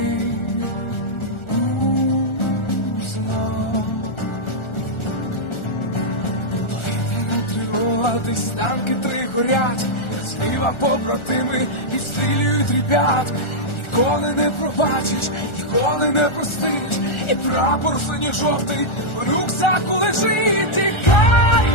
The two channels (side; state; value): right; late; 1.4 ms